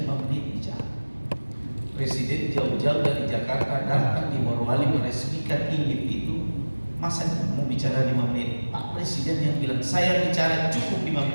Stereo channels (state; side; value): inverted; both; correlation -1.00